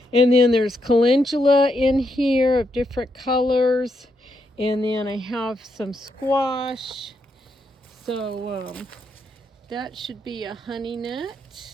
And then there's calendula in here of different colors. And then I have some squash. So that should be a honey nut.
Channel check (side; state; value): both; normal; correlation 0.80